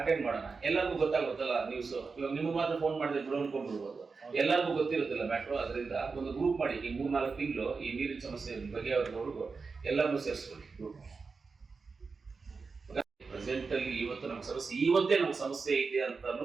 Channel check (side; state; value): left; quieter; 4.6 dB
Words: ಅಟೆಂಡ್ ಮಾಡೋಣ. ಎಲ್ಲರಿಗೂ ಗೊತ್ತಾಗುತ್ತಲ್ಲ ನ್ಯೂಸ್. ಇವಾಗ ನಿಮ್ಗೆ ಮಾತ್ರ ಫೋನ್ ಮಾಡಿದ್ರೆ ಬಿಡು ಅನ್ಕೊಂಡ್ಬಿಡ್ಬೋದು, ಎಲ್ಲರಿಗೂ ಗೊತ್ತಿರುತ್ತಿಲ್ಲ ಮ್ಯಾಟ್ರು. ಅದರಿಂದ ಒಂದು ಗ್ರೂಪ್ ಮಾಡಿ ಈ 3-4 ತಿಂಗಳು ಈ ನೀರಿನ ಸಮಸ್ಯೆ ಬಗ್ಗೆ ಅವ್ರಿಗೂ ಎಲ್ಲರನ್ನೂ ಸೇರಿಸ್ಕೊಳ್ಳಿ ಗ್ರೂಪ್. ಪ್ರೆಸೆಂಟ್ ಅಲ್ಲಿ ಇವತ್ತು ನಮ್ಗೆ ಸಮಸ್ಯೆ, ಇವತ್ತೇ ನಮ್ಗೆ ಸಮಸ್ಯೆ ಇದೆ ಅಂತ